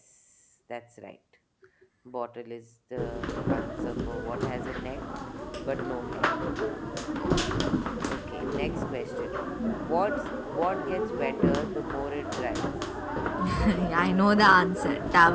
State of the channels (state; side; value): identical; both; correlation 1.00